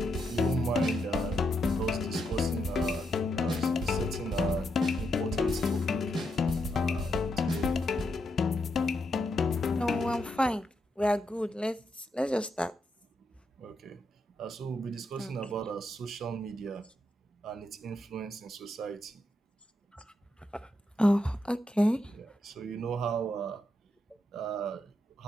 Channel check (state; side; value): normal; both; correlation 0.82